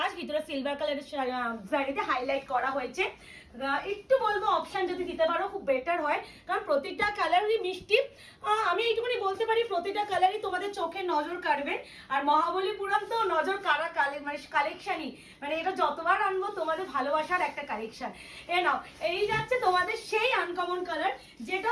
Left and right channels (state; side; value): identical; both; correlation 1.00